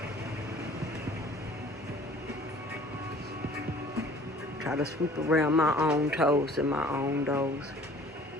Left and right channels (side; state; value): both; normal; correlation 0.50